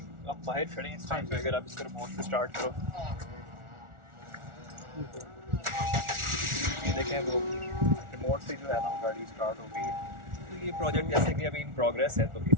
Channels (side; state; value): left; late; 1.4 ms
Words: आप बाहर खड़े हैं इस टाइम पे, अगर आप इसको रिमोट से स्टार्ट करो ये देखें वो रिमोट से जो है ना गाड़ी स्टार्ट हो गई है। तो ये प्रोजेक्ट जैसे कि अभी इन प्रोग्रेस है तो